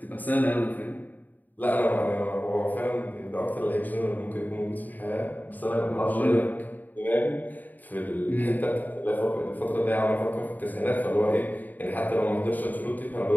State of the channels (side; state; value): right; late; 0.084 ms